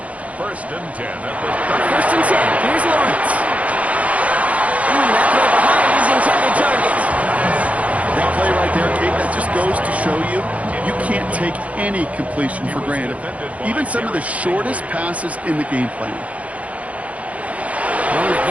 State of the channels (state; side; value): late; left; 0.066 ms